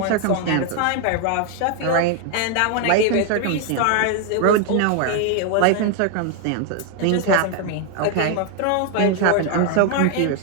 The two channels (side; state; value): both; different; correlation 0.00